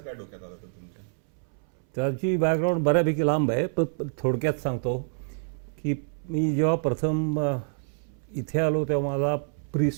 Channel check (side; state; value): left; silent; 60 dB below the other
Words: काय डोक्यात आलं होतं तुमच्या? त्याची बॅकग्राऊंड बऱ्यापैकी लांब आहे, पण थोडक्यात सांगतो की मी जेव्हा प्रथम इथे आलो तेव्हा माझा